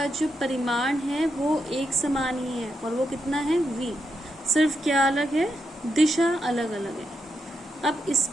जो परिमाण है वो एक समान ही है, और वो कितना है, v। सिर्फ क्या अलग है, दिशा अलग अलग है। अब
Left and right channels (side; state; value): both; normal; correlation 0.83